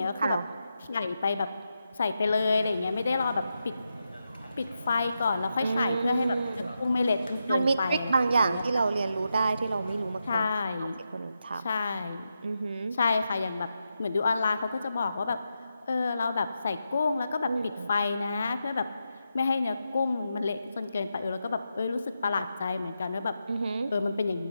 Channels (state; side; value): inverted; both; correlation -0.87